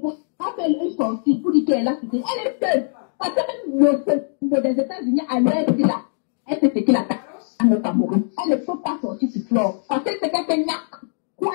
pas faire une sortie pour dire qu'elle est là. Elle est seule. Parce que même des États-Unis, à l'heure de là, elle s'est fait la au Cameroun. Elle ne peut pas sortir sur flore. Parce que c'est quelqu'un quoi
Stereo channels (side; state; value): right; silent; digital silence